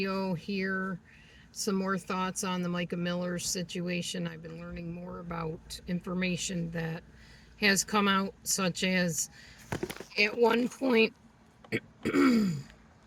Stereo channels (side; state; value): both; identical; correlation 1.00